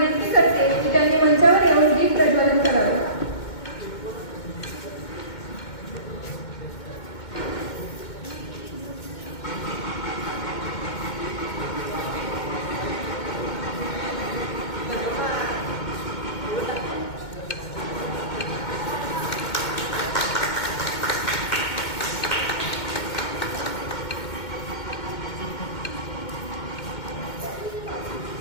करते की त्यांनी मंचावर येऊन दीप प्रज्वलन करावे.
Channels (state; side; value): late; right; 2.2 ms